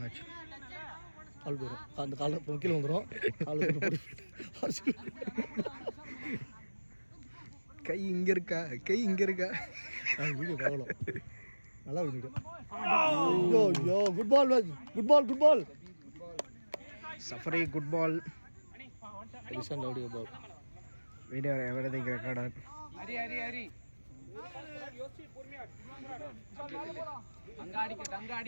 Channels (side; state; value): both; inverted; correlation -1.00